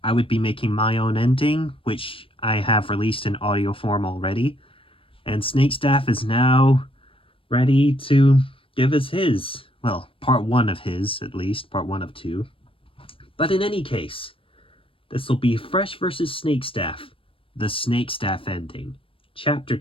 I would be making my own ending, which I have released in audio form already. And Snakestaff is now ready to give us his. Well, part one of his, at least, part one of two. But in any case, this will be Fresh vs. Snakestaff, the Snakestaff ending. Chapter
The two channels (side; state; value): right; late; 0.26 ms